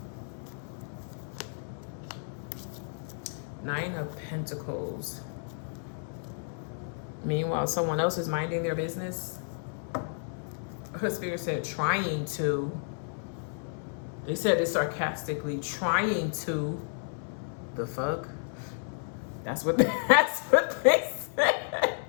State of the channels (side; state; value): right; silent; digital silence